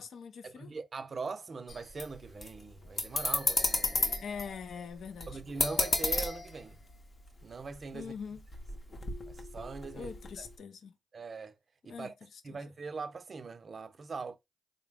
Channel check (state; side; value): normal; both; correlation 0.87